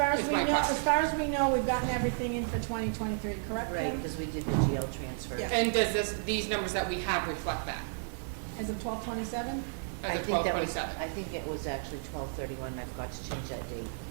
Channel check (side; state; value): left; silent; digital silence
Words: as is we my know, question. as far as we know, we've gotten everything in for 2023, correct? Right, Kim? because we did the jail transfer. Yeah. And does these numbers that we have reflect that Is it 1227? as I a think that was- 1227? I think it was actually 12/31, I forgot to change that date.